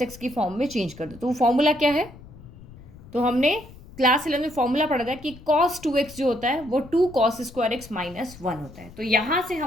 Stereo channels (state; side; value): noise; left; rumble, 19 dB below the sound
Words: एक्स की फॉर्म में चेंज कर दो। तो वो फॉर्मूला क्या है? तो हमने क्लास 11 में फॉर्मूला पढ़ा था कि कॉस 2x जो होता है वो 2 कॉस स्क्वायर एक्स माइनस 1 होता है। तो यहाँ से